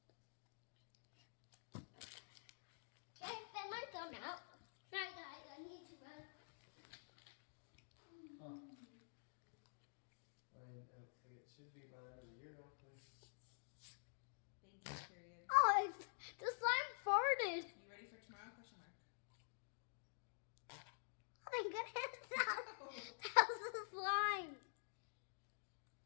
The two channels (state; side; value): silent; right; digital silence